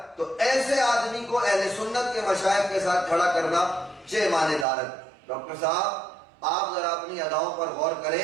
تو ایسے آدمی کو اہل سنت کے مشائخ کے ساتھ کھڑا کرنا چہ معنی دارت۔ ڈاکٹر صاحب آپ ذرا اپنی اداؤں پر غور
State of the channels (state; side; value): drops out; left; at 4.7 s